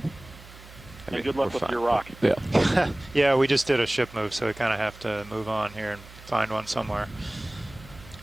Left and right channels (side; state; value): right; noise; hum, 19 dB below the sound